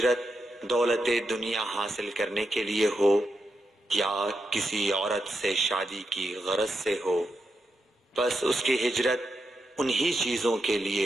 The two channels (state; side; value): normal; both; correlation 0.85